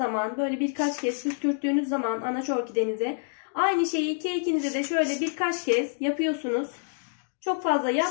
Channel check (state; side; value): silent; right; digital silence